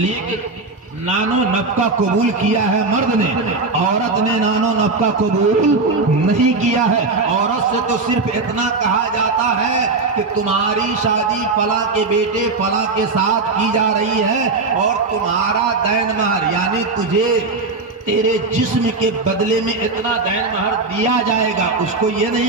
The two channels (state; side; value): quieter; left; 3.8 dB